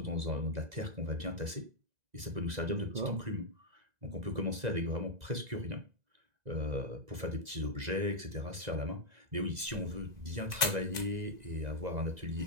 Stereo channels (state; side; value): late; left; 2.0 ms